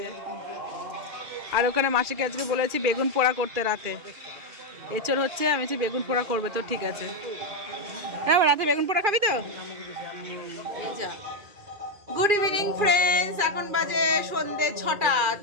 আর ওখানে মাসিকে আজকে বলেছি বেগুন পোড়া করতে রাতে, এঁচড় হচ্ছে, আমি বলছি বেগুন পোড়া করবে, তো ঠিক আছে। হ্যাঁ রাতে বেগুন পোড়া খাবি তো? এই যা। গুড ইভিনিং ফ্রেন্ডস, এখন বাজে সন্ধ্যে 6টা।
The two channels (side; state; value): left; late; 2.4 ms